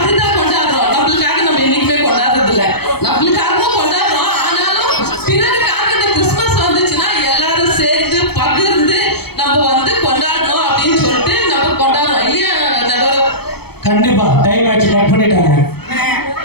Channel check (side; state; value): right; late; 0.97 ms